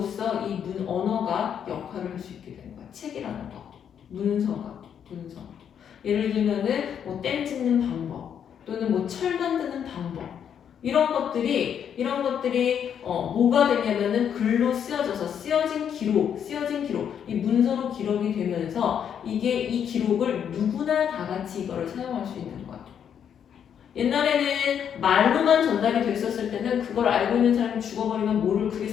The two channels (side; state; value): right; quieter; 8.4 dB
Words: 이 언어가 역할을 할 수 있게 되는 거야. 책이라는 거, 문서. 예를 들면은 뭐 댐 짓는 방법, 또는 뭐 철 만드는 방법, 이런 것들이 뭐가 되냐면은 글로 쓰여진 기록, 이 문서로 기록이 되면서 이 기록을 누구나 다 같이 이거를 사용할 수 있는 거야. 옛날에는 말로만 전달이 됐었을 때는 그걸 알고 있는 사람이 죽어버리면 그게